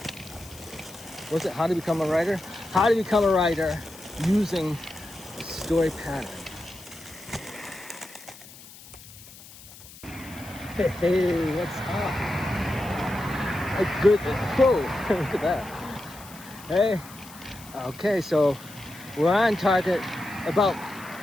what's it? How to become a writer? How to become a writer using a story pattern. Hey, what's up? A good, whoa, look at that. Hey, okay, so we're on target, about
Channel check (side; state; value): left; noise; hiss, 19 dB below the sound